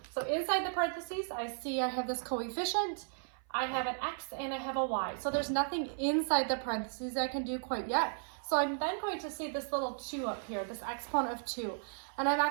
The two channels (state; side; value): silent; left; 54 dB below the other